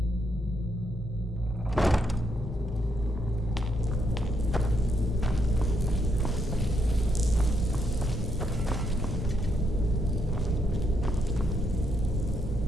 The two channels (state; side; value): normal; both; correlation 0.77